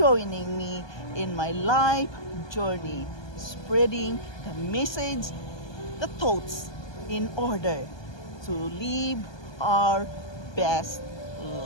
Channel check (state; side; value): late; right; 1.2 ms